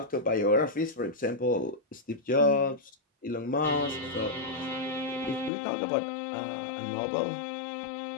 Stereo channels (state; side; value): drops out; right; at 5.5 s